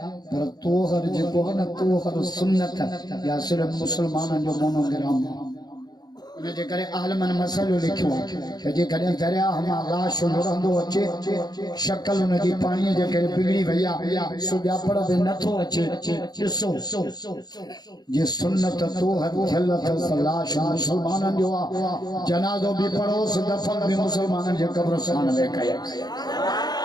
पर तोहर जेको आहे न तोहर सुन्नत या सिर्फ़ु मुस्लमाननि जो मोनोग्राम उन जे करे आलमनि मसइलो लिखियो त जेकॾहिं दरियाह मां लाश लुढ़ंदो अचे शक्ल उन जी पाणीअ जे करे बिगड़ी वई आहे सुञापण बि नथो अचे ॾिसो जे सुन्नत तोहर थियल अथसि लाश मुस्लमाननि जो आहे जनाज़ो बि पढ़ोसि दफ़न बि मुस्लमाननि जे क़ब्रस्तान में कयसि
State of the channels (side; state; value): right; late; 0.19 ms